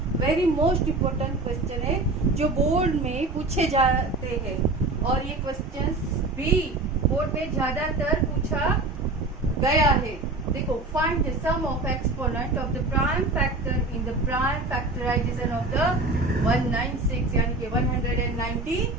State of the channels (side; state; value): left; quieter; 3.1 dB